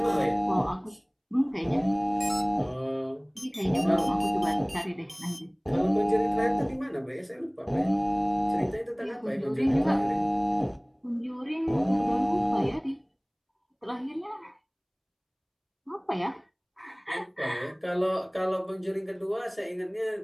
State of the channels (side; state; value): both; identical; correlation 1.00